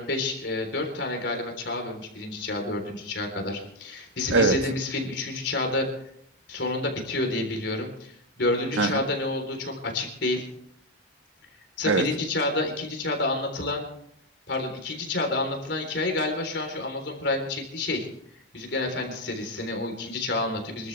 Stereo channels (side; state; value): both; normal; correlation 0.05